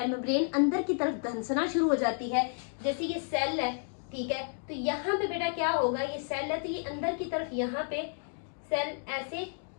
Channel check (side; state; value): right; silent; 57 dB below the other